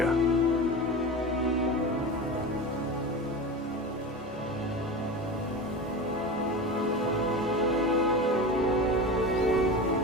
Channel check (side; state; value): both; normal; correlation 0.27